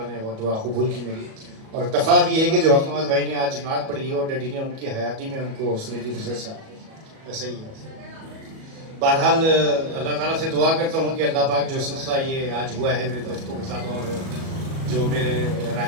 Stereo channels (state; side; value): late; left; 37 ms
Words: نے وہ دعا قبول کی میری، اور اتفاق یہ ہے کہ جو حق نواز بھائی نے آج نعت پڑھی ہے اور ڈیڈی نے ان کی حیاتی میں ان کو سنی تھی فضل صاحب، ایسا ہی ہے۔ بہرحال اللہ تعالیٰ سے دعا کرتا ہوں کہ اللہ پاک جو سلسلہ یہ آج ہوا ہے میرے دوستوں کے ساتھ، اور جو میرے